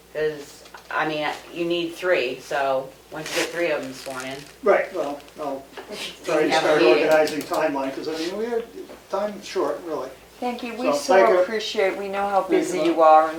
because, I mean, you need 3, so once you get 3 of them sworn in. right, well, I'll try to have a start meeting. organizing timeline, because I mean, we are, time's short, really. Thank you, So, we thank you. so appreciate, we know how busy you. you are,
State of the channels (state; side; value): identical; both; correlation 1.00